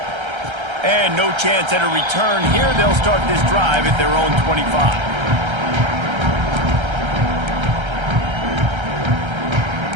And no chance at a return here. They'll start this drive at their own 25.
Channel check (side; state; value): left; late; 1.3 ms